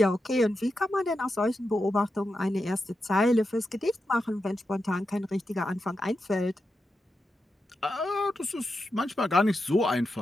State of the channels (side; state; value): both; normal; correlation 0.88